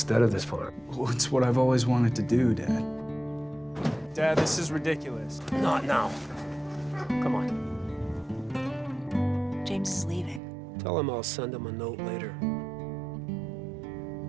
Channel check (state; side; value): drops out; left; at 10.4 s